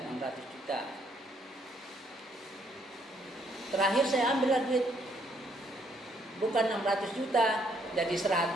juta. Terakhir saya ambil duit, bukan 600 juta, jadi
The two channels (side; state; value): both; normal; correlation 0.69